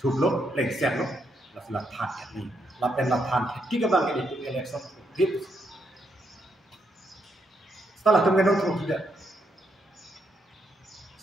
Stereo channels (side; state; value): both; normal; correlation 0.78